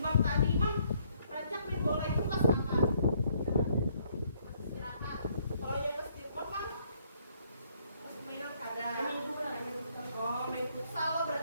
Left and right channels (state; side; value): inverted; both; correlation -0.68